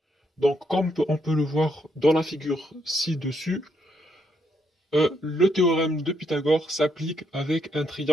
Donc, comme on peut le voir dans la figure ci-dessus, le théorème de Pythagore s'applique avec un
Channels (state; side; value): normal; both; correlation 0.75